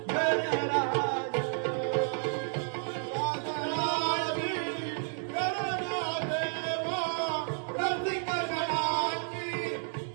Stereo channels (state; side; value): silent; left; 57 dB below the other